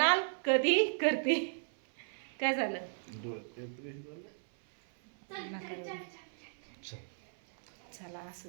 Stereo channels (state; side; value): silent; left; 54 dB below the other